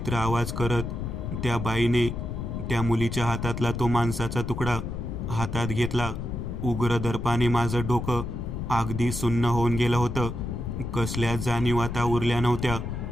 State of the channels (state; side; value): noise; left; rumble, 5 dB below the sound